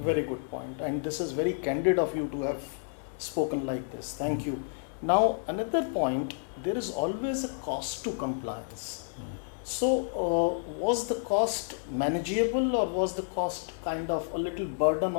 good point. And this is very candid of you to have spoken like this. Thank you. Now, another point, there is always a cost to compliance. So, was the cost manageable or was the cost kind of a little burden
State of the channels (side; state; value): right; silent; 58 dB below the other